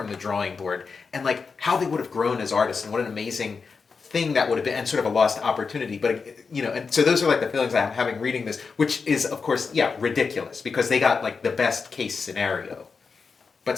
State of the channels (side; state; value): right; quieter; 5.1 dB